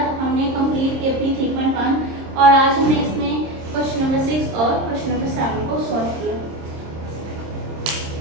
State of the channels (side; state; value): left; late; 26 ms